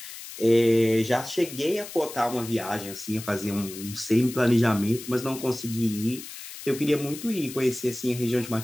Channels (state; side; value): noise; left; hiss, 12 dB below the sound